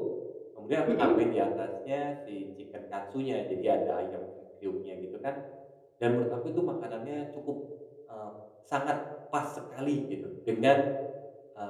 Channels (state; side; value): identical; both; correlation 1.00